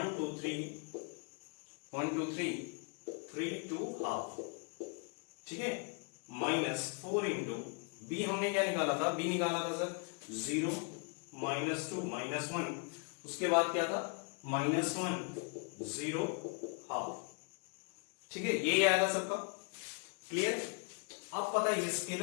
2 3 1 2 3 3 2 हाफ, ठीक है, माइनस 4 इंटू बी हमने क्या निकाला था, बी निकाला था सर 0 -2 -1, उसके बाद क्या था -1 0 हाफ। ठीक है, ये आया था सबका क्लियर। अब पता है ये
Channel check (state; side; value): quieter; right; 36.9 dB